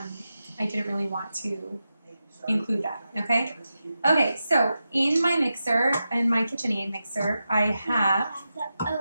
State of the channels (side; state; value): both; inverted; correlation -0.90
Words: didn't really want to include that, okay? Okay, so in my mixer, in my KitchenAid mixer, I have the